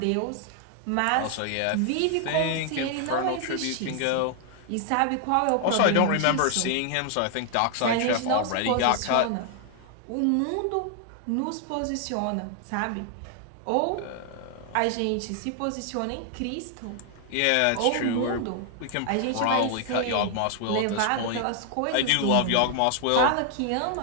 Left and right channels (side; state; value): both; different; correlation 0.00